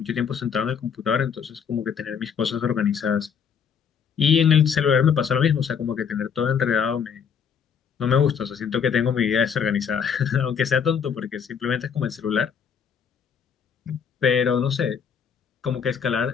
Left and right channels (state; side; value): quieter; right; 7.1 dB